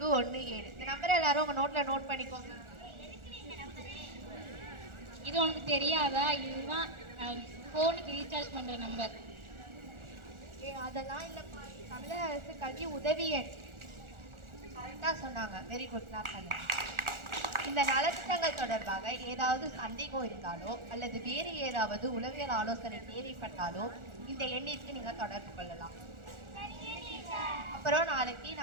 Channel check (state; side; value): late; left; 1.4 ms